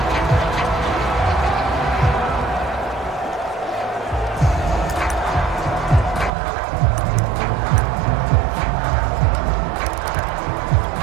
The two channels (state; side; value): drops out; left; at 6.3 s